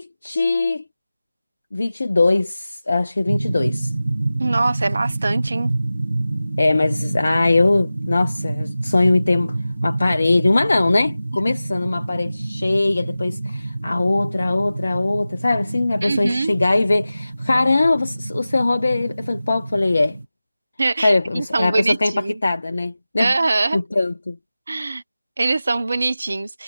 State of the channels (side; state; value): both; inverted; correlation -0.96